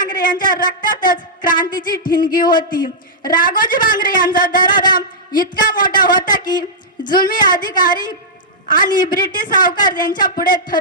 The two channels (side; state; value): both; normal; correlation -0.12